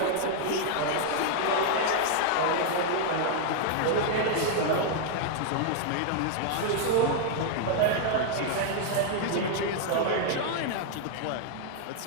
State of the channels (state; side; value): different; both; correlation 0.00